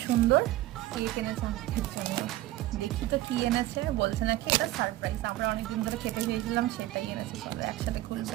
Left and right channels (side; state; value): left; quieter; 16.0 dB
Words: সুন্দর কেক এনেছে আমাদের জন্য। দেখি তো কি এনেছে। বলছে নাকি এটা সারপ্রাইজ। আমরা অনেকদিন ধরে খেতে চেয়েছিলাম, সেটাই এনেছে। চলো একসাথে খুলবো।